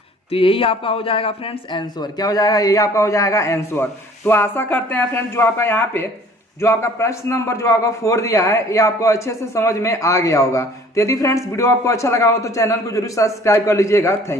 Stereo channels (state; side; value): normal; both; correlation 0.53